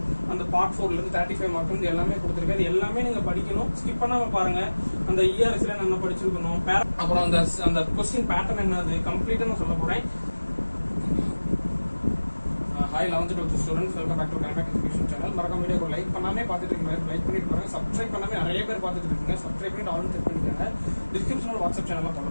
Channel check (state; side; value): inverted; both; correlation -1.00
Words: அந்த பார்ட் 4ல இருந்து 35 மார்க் வந்து எல்லாமே கொடுத்துருக்காரு. எல்லாமே நீங்க படிக்கணும், ஸ்கிப் பண்ணாம பாருங்க. அந்த இஆர்எஸ்ல நம்ம படிச்சிருக்கணும், அப்புறம் அந்த கொஸ்டின் பேட்டர்ன் என்னது கம்ப்ளீட்டா நான் சொல்ல போறேன். Hi 11th 12th students, welcome back to Connect Education channel. மறக்காம வீடியோக்கு லைக் பண்ணாமே பார்த்துட்டு இருக்கீங்க, லைக் பண்ணிட்டு பாருங்க. சப்ஸ்கிரைப் பண்ணாமே நிறைய பேர் பார்த்துட்டு இருக்கீங்க, சப்ஸ்கிரைப் பண்ணிட்டு ஆல் செக் பண்ணிக்கோங்க. டிஸ்கிரிப்ஷன்ல வாட்ஸ்அப் சேனல்ல ஃபாலோ